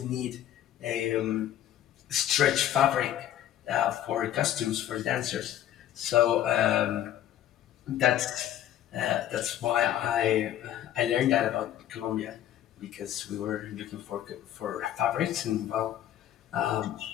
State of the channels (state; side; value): quieter; right; 11.7 dB